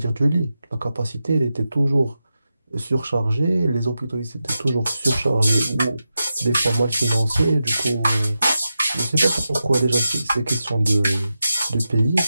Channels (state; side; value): inverted; both; correlation -0.90